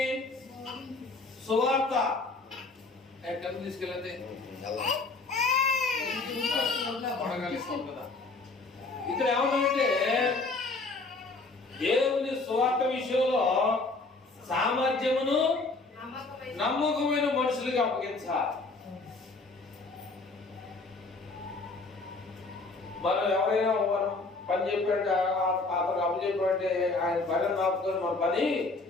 సువార్త ఎక్కడ తీసుకెళ్ళతే ఇక్కడ ఏమన్నాడంటే దేవుని సువార్త విషయంలో సామర్థ్యమును నమ్మకమైన మనుషులకి అప్పగించాలి. మనం ఎవరైనా మనం పని చెప్పాడంటే అతను అప్పచెప్పాడంటే ఆయన పని నాపుకొని మన పని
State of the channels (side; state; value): right; quieter; 3.6 dB